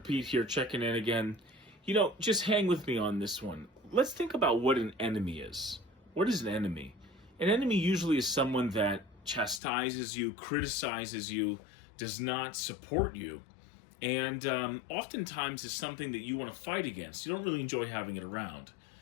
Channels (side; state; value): right; drops out; at 9.6 s